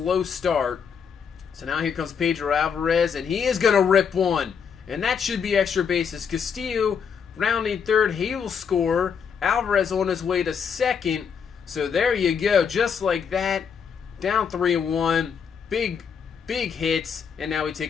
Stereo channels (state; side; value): quieter; right; 6.8 dB